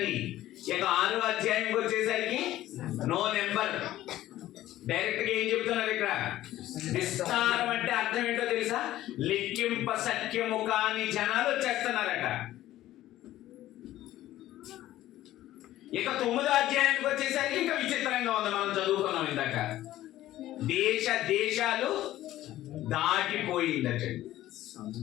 ఇక 6వ అధ్యాయంకి వచ్చేసరికి నో నెంబర్. డైరెక్ట్ గా ఏం చెప్తున్నారు ఇక్కడ? విస్తారం అంటే అర్థం ఏంటో తెలుసా? లెక్కింప సఖ్యము కాని జనాలు వచ్చేస్తున్నారట. ఇక 9వ అధ్యాయానికి వచ్చేసరికి ఇంకా విచిత్రంగా ఉంది. మనం చదువుకున్నాం ఇందాక. దేశాలు దాటిపోయిందట.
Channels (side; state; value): right; quieter; 14.4 dB